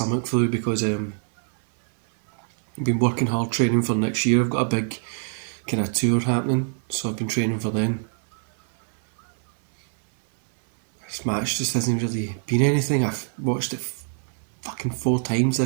flu, because I've been working hard training for next year. I've got a big kind of tour happening, so I've been training for then. This match just hasn't really been anything. I've watched it fucking 4 times,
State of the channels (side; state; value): left; silent; 57 dB below the other